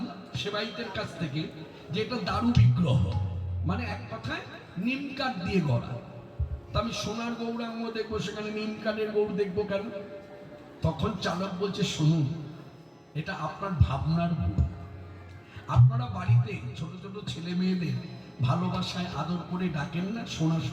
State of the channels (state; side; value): identical; both; correlation 1.00